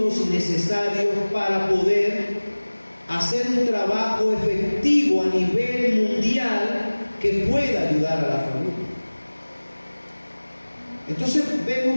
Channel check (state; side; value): inverted; both; correlation -1.00